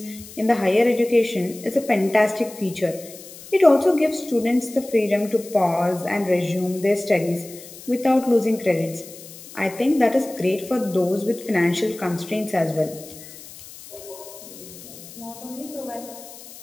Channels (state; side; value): noise; left; hiss, 17 dB below the sound